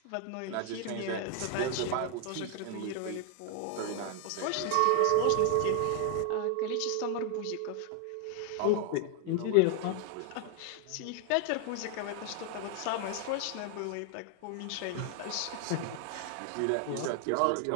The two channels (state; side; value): different; both; correlation 0.00